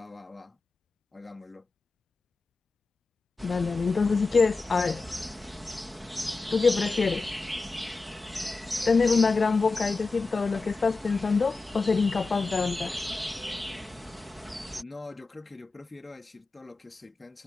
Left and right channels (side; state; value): right; quieter; 3.8 dB